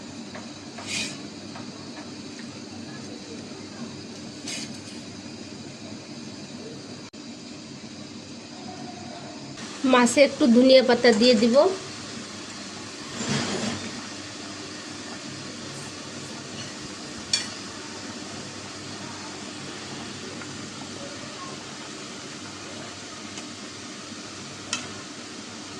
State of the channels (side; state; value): both; identical; correlation 1.00